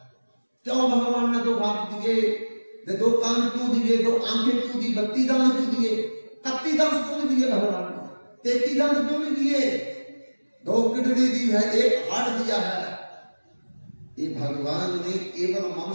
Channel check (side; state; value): both; inverted; correlation -1.00